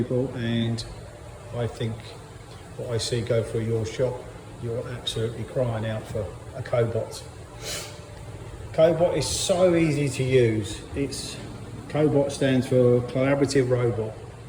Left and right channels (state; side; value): identical; both; correlation 1.00